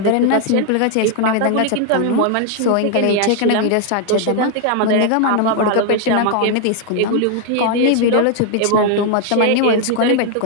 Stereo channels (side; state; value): both; different; correlation 0.00